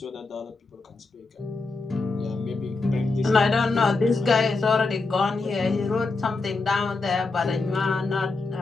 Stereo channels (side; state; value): right; quieter; 3.7 dB